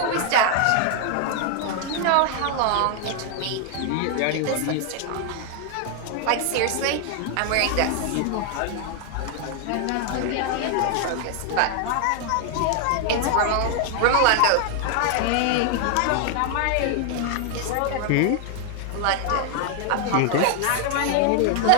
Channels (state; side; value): different; both; correlation 0.00